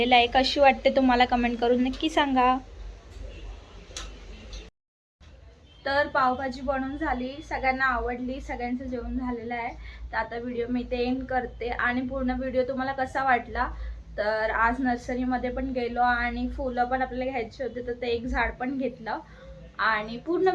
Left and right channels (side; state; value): both; identical; correlation 1.00